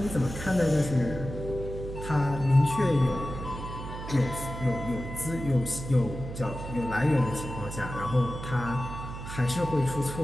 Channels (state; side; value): noise; right; hum, 9 dB below the sound